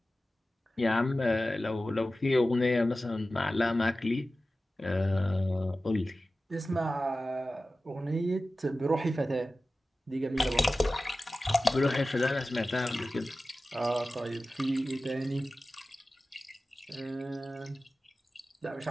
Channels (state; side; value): normal; both; correlation 0.95